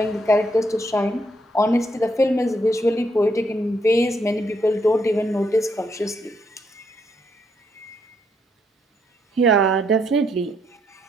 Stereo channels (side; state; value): both; normal; correlation 0.75